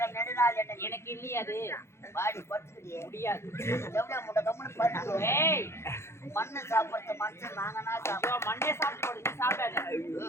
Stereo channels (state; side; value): late; right; 0.13 ms